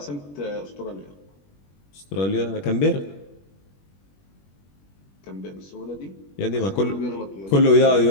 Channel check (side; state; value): right; late; 21 ms